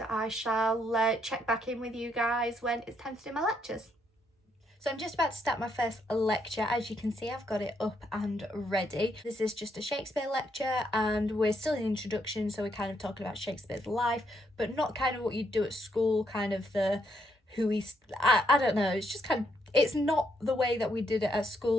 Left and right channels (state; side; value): normal; both; correlation 0.75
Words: I shall check back in with you guys when it's time to do my lectures. So I'm just about to start my first lecture. As you can see, I've got it up and ready. This is just a Shakespeare lecture, and we're still in introduction, so we're kind of talking about Shakespeare's life, but not kind of what you do at school, kind of the who he's, I don't know, it's just kind of, it's not the way that we did it at